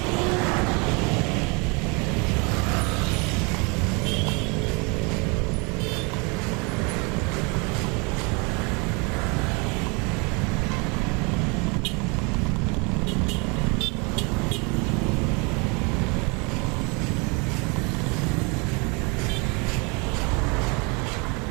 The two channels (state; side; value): quieter; left; 30.7 dB